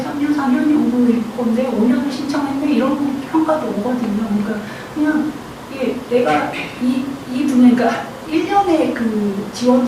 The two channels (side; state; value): both; identical; correlation 1.00